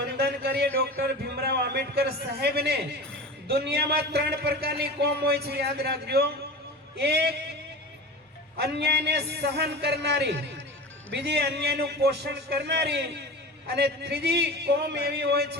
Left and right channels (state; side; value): normal; both; correlation 0.32